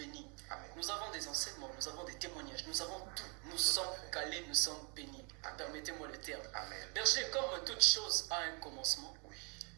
Amen. Nous avons des enseignements, nous avons des témoignages, nous avons tout. Nous sommes calés, nous sommes bénis. Permettez-moi le terme. Amen. Berger, comme toute chose a un commencement, Oui.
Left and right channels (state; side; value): quieter; left; 34.6 dB